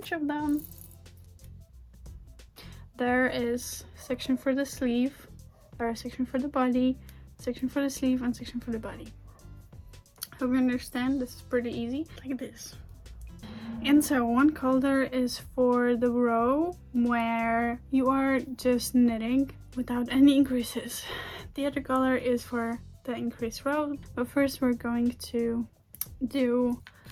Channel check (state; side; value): identical; both; correlation 1.00